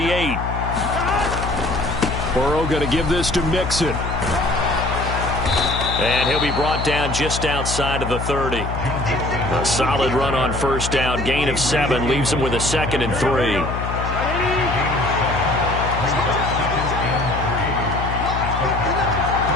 Burrow going to give this to Mixon. And he'll be brought down just outside of the 30. A solid run on first down. Gain of 7 leaves him with a 2nd and 3.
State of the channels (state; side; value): noise; left; hum, 4 dB below the sound